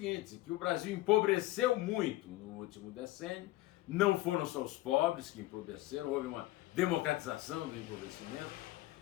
que o Brasil empobreceu muito no último decênio, não foram só os pobres que empobreceram, houve uma democratização do empobrecimento,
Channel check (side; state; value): right; quieter; 17.5 dB